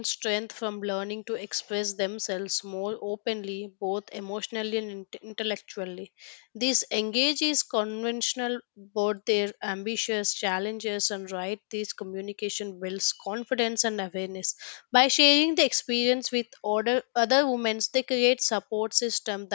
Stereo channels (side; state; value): right; silent; digital silence